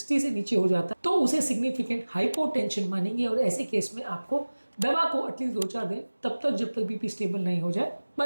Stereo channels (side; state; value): both; inverted; correlation -1.00